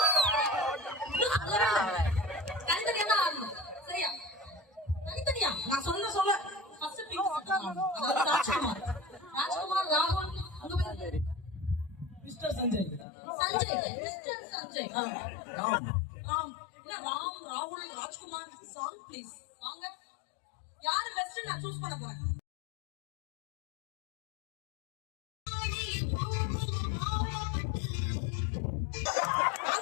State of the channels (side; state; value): right; drops out; at 13.1 s